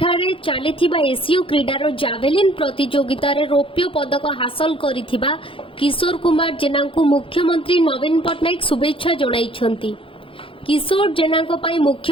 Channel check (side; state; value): right; late; 0.26 ms